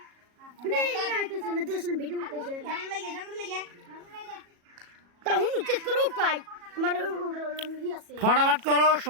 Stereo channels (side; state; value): left; late; 37 ms